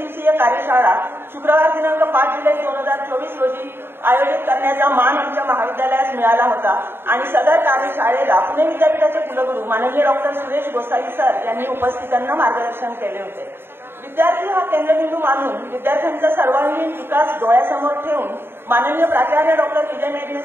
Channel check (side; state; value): left; late; 0.11 ms